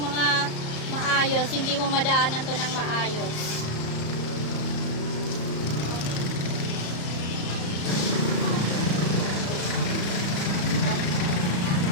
maayos. Hindi mo madaanan to ng maayos.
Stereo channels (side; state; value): right; late; 34 ms